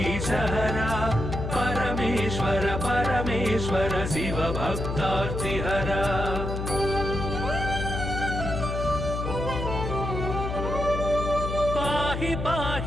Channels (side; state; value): left; noise; hum, 4 dB below the sound